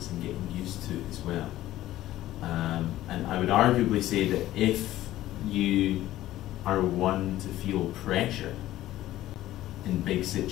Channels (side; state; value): right; quieter; 14.6 dB